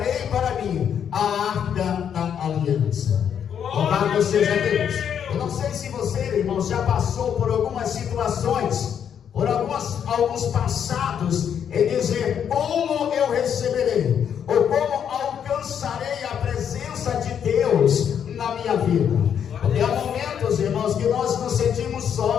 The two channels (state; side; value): quieter; right; 8.4 dB